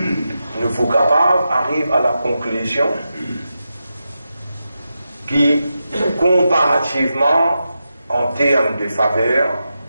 Nous faut capables arrive à la conclusion qui comparativement en termes de faveur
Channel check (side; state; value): both; inverted; correlation -0.89